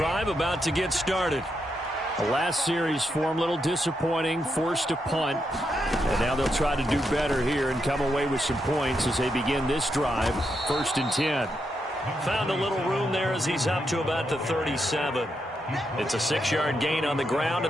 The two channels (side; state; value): both; normal; correlation 0.82